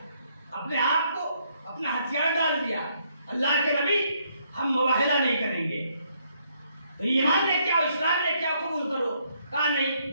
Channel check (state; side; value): inverted; both; correlation -0.72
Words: اپنے آپ کو اپنا ہتھیار ڈال دیا. اللہ کے نبی ہم مباہلہ نہیں کریں گے، تو ایمان لے کے آؤ، اسلام لے کے آؤ، قبول کرو. کہا نہیں